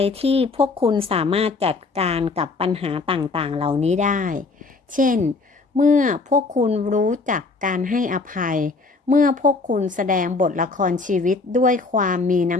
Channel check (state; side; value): quieter; right; 3.9 dB